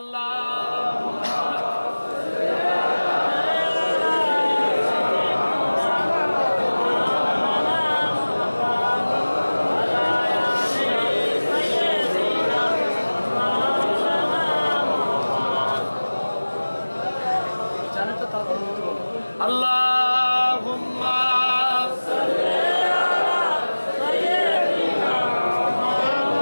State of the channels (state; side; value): inverted; both; correlation -1.00